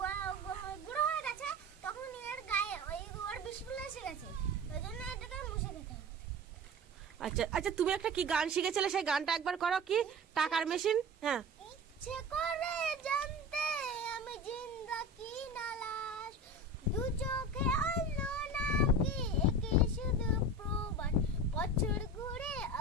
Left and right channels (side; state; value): both; normal; correlation 0.32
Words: আচ্ছা আচ্ছা, তুমি একটা কি গান শিখেছিলে, সেই গানটা একবার করো। কি? টাকার মেশিন। হ্যাঁ। ইচ্ছে করে জানতে আমি জিন্দা কি না লাশ, দু চোখে অন্য নাম কি একে শুধু প্রবাস, বছর ঘুরে